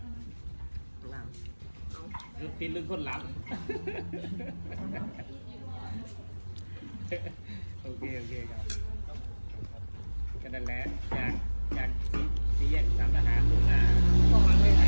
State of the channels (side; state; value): both; inverted; correlation -1.00